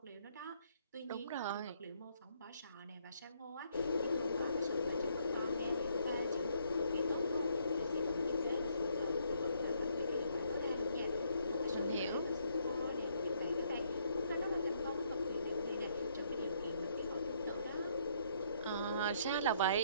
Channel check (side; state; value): both; inverted; correlation -0.69